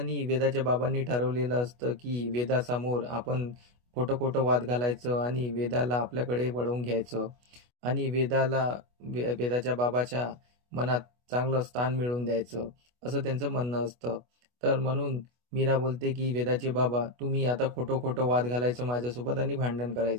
वेदाच्या बाबांनी ठरवलेलं असतं की वेदासमोर आपण खोटं खोटं वाद घालायचं आणि वेदाला आपल्याकडे वळवून घ्यायचं आणि वेदाच्या बाबाच्या मनात चांगलं स्थान मिळवून द्यायचं, असं त्यांचं म्हणणं असतं. तर म्हणून मीरा बोलते की वेदाचे बाबा, तुम्ही आता खोटं खोटं वाद घालायचं माझ्यासोबत आणि भांडण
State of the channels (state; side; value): late; left; 25 ms